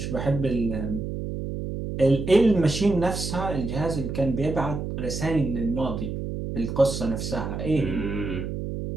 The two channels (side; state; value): right; noise; hum, 5 dB below the sound